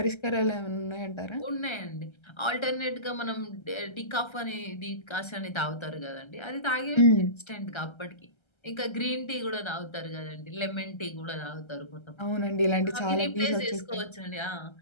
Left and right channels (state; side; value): late; right; 1.3 ms